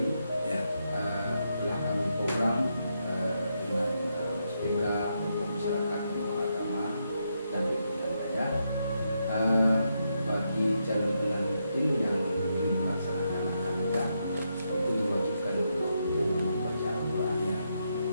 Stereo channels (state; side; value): inverted; both; correlation -0.81